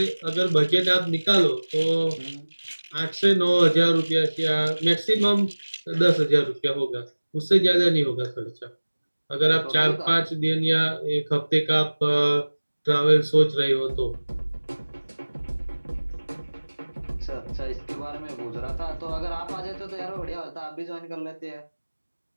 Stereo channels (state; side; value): inverted; both; correlation -1.00